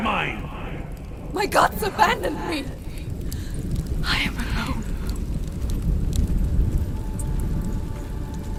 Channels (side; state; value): both; identical; correlation 1.00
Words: mine! My gods abandoned me! I am alone.